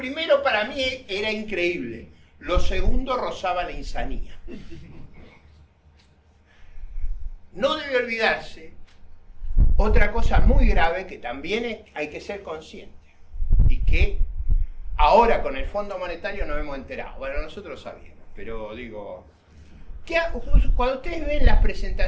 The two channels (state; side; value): identical; both; correlation 1.00